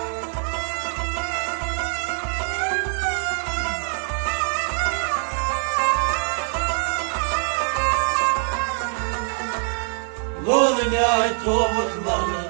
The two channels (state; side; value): silent; left; 63 dB below the other